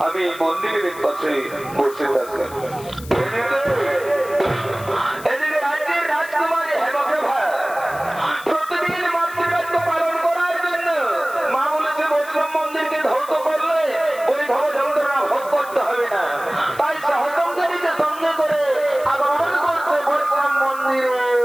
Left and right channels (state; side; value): noise; left; hiss, 18 dB below the sound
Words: আমি মন্দিরের পাশে বসে থাকি। এদিকে রাজ্যের রাজকুমারী হেমপ্রভা প্রতিদিন মাতৃকার্য পালন করার জন্য মা বলেছে বৈষ্ণব মন্দিরকে ধ্বংস করলে ওই ভব যন্ত্রণা ভোগ করতে হবে না, তাই সহসঙ্গীকে সঙ্গে করে আগমন করছে বৈষ্ণব